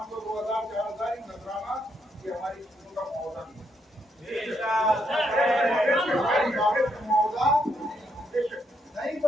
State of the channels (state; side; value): normal; both; correlation 0.76